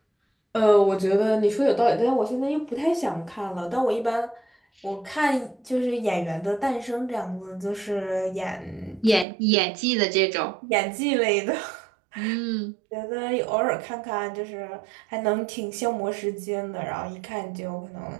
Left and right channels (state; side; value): drops out; left; at 9.2 s